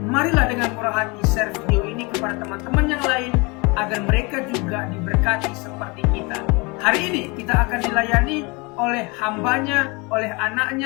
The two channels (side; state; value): right; quieter; 27.9 dB